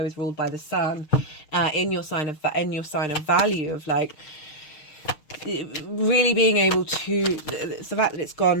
is ruled by the sun in your sign of value, of like really being able to, it's the fact that it's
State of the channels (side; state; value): right; late; 6.5 ms